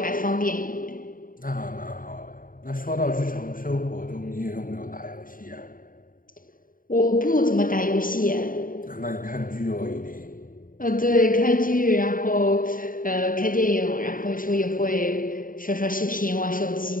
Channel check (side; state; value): right; late; 0.40 ms